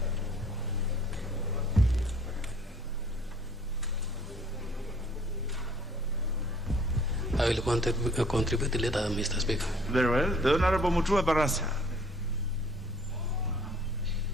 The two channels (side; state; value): both; normal; correlation 0.57